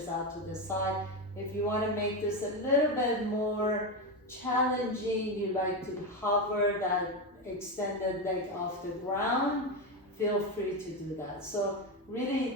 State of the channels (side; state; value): both; normal; correlation 0.13